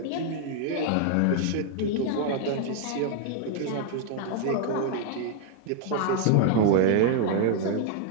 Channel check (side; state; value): both; different; correlation 0.00